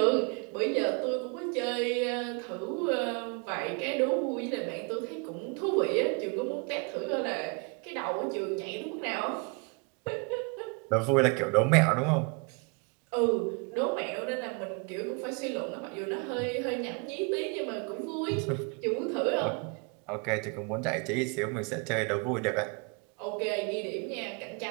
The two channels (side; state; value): left; quieter; 33.8 dB